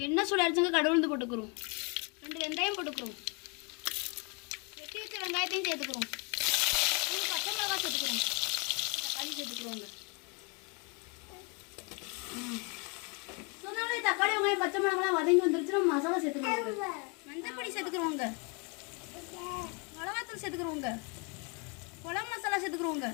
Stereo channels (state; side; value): quieter; right; 33.0 dB